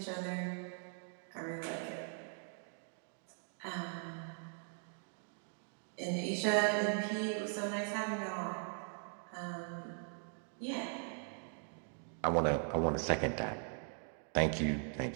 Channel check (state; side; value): silent; left; 51 dB below the other